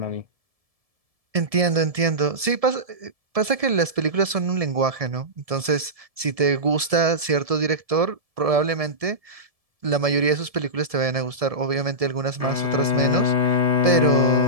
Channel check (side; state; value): left; late; 1.7 ms